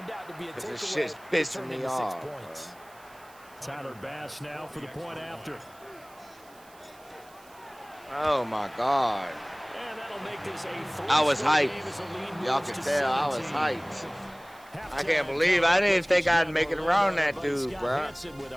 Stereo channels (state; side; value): noise; right; hiss, 26 dB below the sound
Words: out to be a because this takeaway shit's that pissing turned me into 6 off. points. Tyler Bass now for the point after. Oh, my God. And that'll make this a I was three-score hyped. game as the lead Y'all moves can to tell I was 17. hyped. I Halftime can't believe I didn't think I'd Scott make it around that Orlando, dude, Scott bro. Hansen with